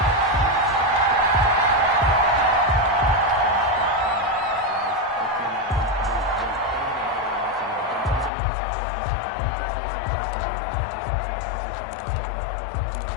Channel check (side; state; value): right; drops out; at 8.3 s